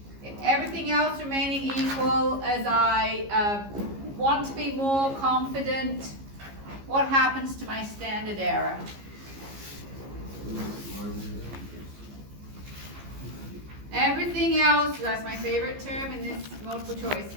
everything else remaining equal as I want to be more confident, what happens to my standard error? Everything else, that's my favorite term in this multiple choice,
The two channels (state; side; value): late; left; 15 ms